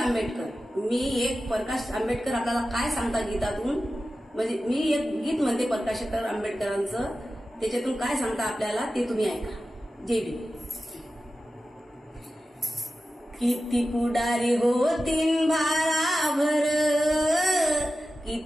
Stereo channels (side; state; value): both; normal; correlation 0.93